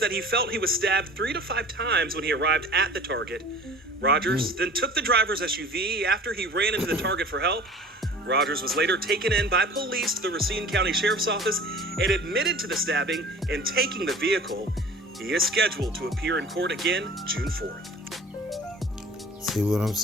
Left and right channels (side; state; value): both; normal; correlation 0.44